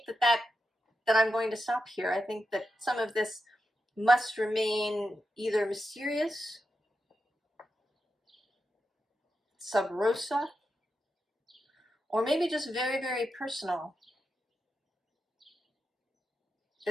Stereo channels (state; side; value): normal; both; correlation 0.88